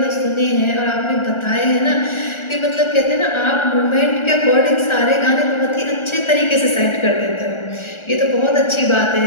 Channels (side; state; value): right; late; 1.4 ms